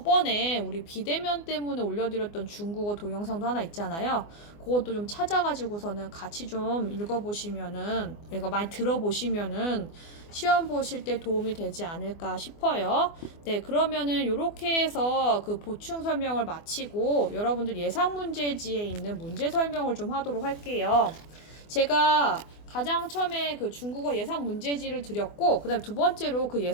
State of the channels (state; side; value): late; right; 24 ms